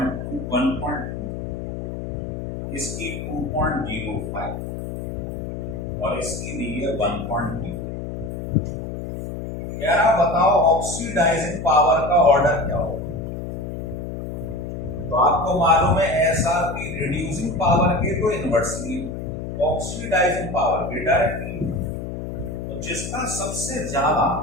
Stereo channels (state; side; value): noise; left; hum, 6 dB below the sound